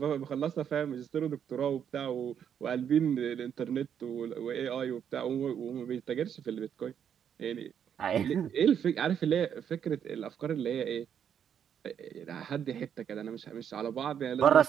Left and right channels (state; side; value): quieter; left; 8.5 dB